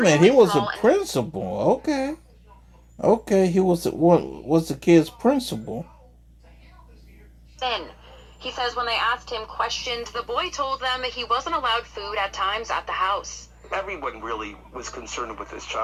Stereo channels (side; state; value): both; identical; correlation 1.00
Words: minute. He extremely was a small and principal. Okay. Okay, he was what was the kid's principal. thin. He says when they asked him questions, the boy told them he wasn't allowed food at times at the house. Everyone really was concerned with this